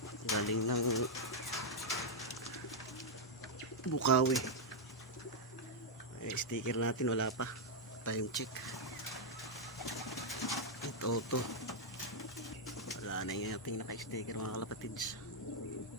Galing ng Bukawi. Sticker natin wala pa. Time check. Ito. Wala na yung ating naka-sticker mga kalapatids.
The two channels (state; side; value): normal; both; correlation -0.02